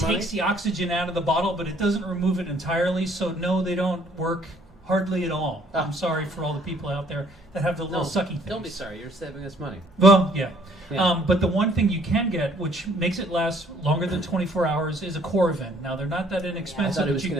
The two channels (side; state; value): both; normal; correlation 0.61